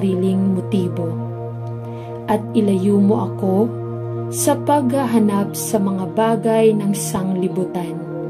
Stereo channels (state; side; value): identical; both; correlation 1.00